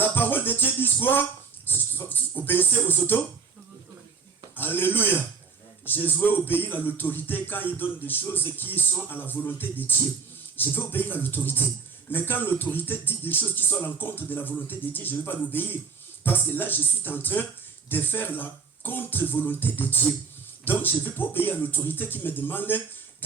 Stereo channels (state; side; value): quieter; left; 5.4 dB